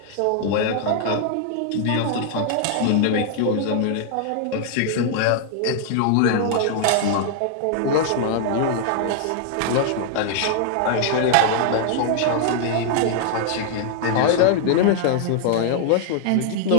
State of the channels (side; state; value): both; different; correlation 0.00